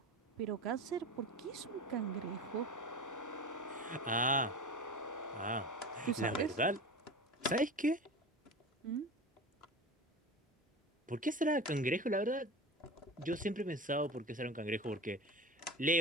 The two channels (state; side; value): normal; both; correlation 0.31